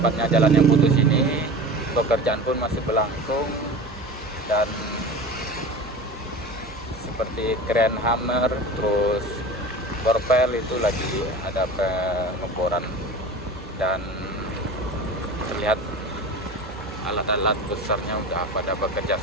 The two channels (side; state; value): both; normal; correlation 0.33